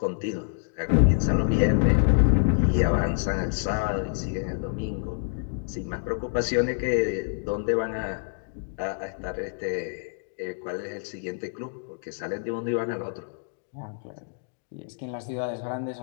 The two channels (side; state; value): right; silent; digital silence